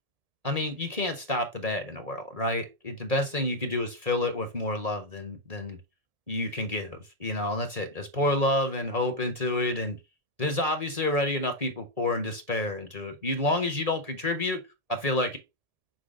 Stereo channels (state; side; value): late; left; 1.7 ms